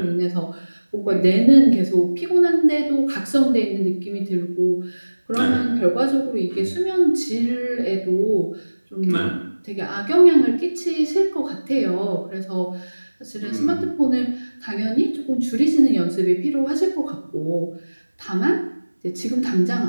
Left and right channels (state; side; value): inverted; both; correlation -1.00